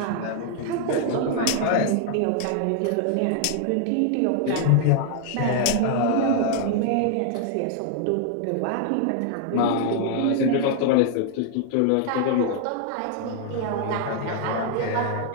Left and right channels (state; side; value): different; both; correlation 0.00